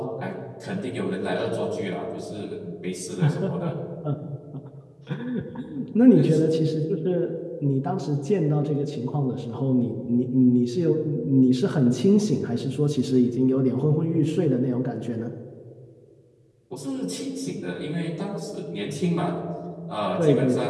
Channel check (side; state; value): both; identical; correlation 1.00